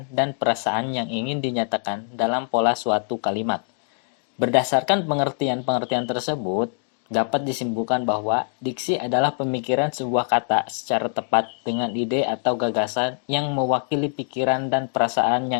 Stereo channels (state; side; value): silent; right; 63 dB below the other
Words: dan perasaan yang ingin dinyatakan dalam pola suatu kalimat. Berdasarkan pengertian-pengertian tersebut, dapat disimpulkan bahwa diksi adalah pemikiran sebuah kata secara tepat dengan ide atau gagasan yang mewakili pikiran dan perasaan